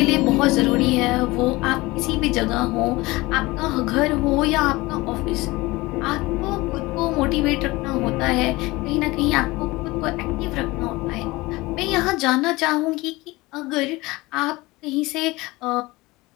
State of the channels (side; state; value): right; quieter; 21.3 dB